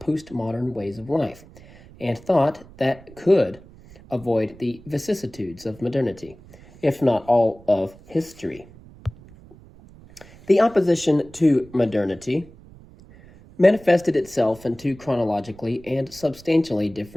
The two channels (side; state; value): right; noise; rumble, 22 dB below the sound